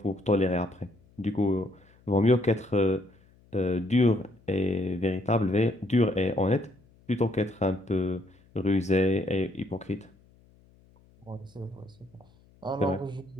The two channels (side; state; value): left; noise; hum, 29 dB below the sound